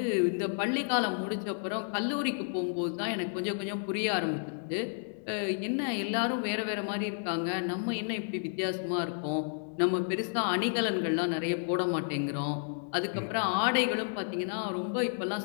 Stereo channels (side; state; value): right; silent; digital silence